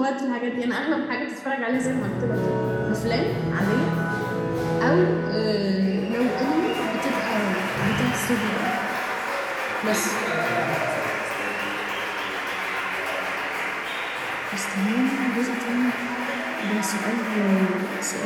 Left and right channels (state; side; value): identical; both; correlation 1.00